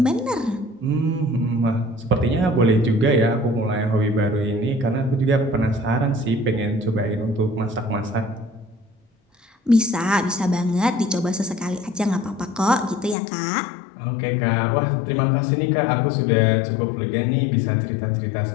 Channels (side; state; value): right; drops out; at 13.2 s